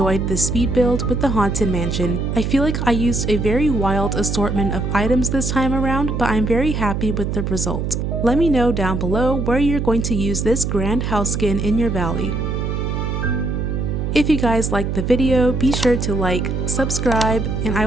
this speed build with the Haunted Mansion. I feel like I used a very wild assortment of items this time around, but I'm very happy with the result. Let me know down below where you're going to use this grand house skin in your valley. If you guys liked the video, be sure to like, subscribe, and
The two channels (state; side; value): noise; right; hum, 1 dB below the sound